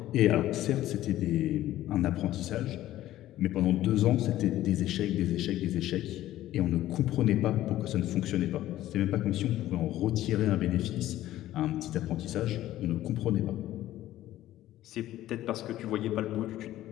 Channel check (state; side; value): quieter; right; 14.2 dB